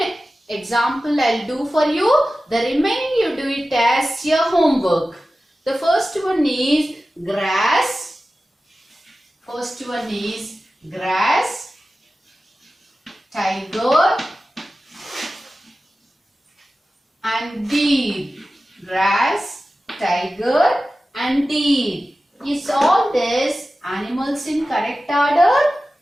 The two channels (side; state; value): both; normal; correlation 0.95